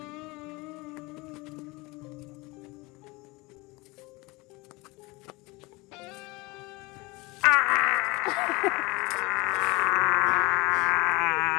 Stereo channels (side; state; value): right; quieter; 23.9 dB